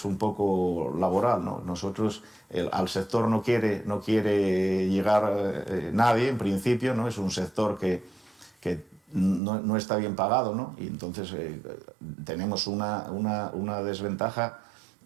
laboral, ¿no? Nosotros, al sector no quiere llegar nadie, en principio, ¿no? Es un sector que no está bien pagado, ¿no? Y entonces tenemos una desventaja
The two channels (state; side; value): drops out; left; at 9.4 s